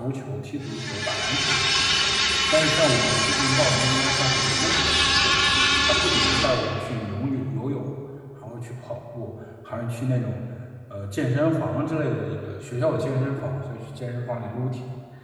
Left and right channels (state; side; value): identical; both; correlation 1.00